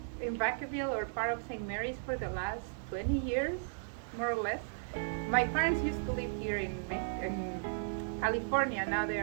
in Vacaville or part of St. Mary's for the last 20 years, more or less. My parents used to live here in California. Now they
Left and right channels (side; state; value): left; silent; 54 dB below the other